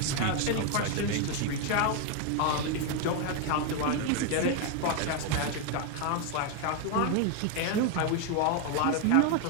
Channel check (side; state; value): both; different; correlation 0.01